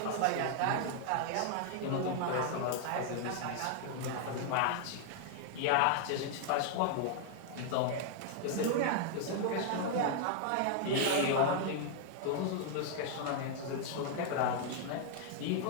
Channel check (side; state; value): both; different; correlation 0.00